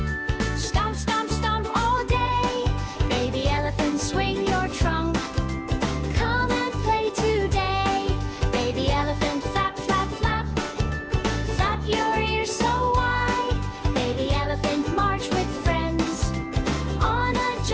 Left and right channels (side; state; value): both; identical; correlation 1.00